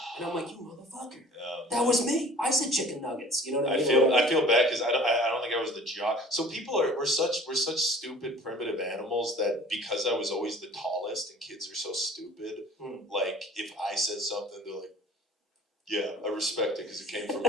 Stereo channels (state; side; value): normal; both; correlation 0.47